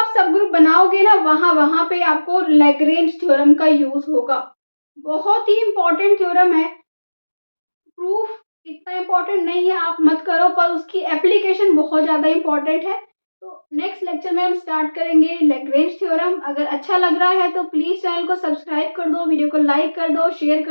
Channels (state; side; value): inverted; both; correlation -1.00